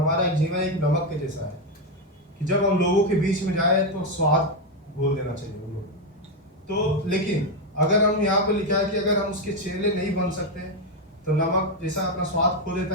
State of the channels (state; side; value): normal; both; correlation 0.06